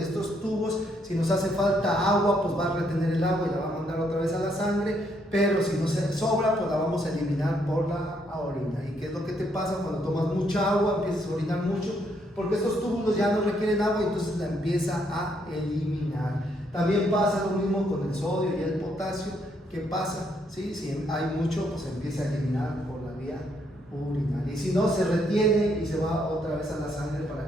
estos tubos, si nos hace falta agua, pues va a retener el agua y la va a mandar otra vez a la sangre, pero si nos sobra, pues la vamos a eliminar por la orina. ¿Y qué es lo que te pasa cuando tomas mucha agua? Empiezas a orinar mucho, porque estos túbulos ya no requieren agua y entonces la empieza a eliminar. También pasa lo mismo con el sodio y el potasio. ¿Qué pasa? ¿Sí? Si hay mucho, pues se empieza a eliminar por la vía urinaria. Y si no, se retiene y se va otra vez a la sangre para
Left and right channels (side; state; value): both; normal; correlation 0.73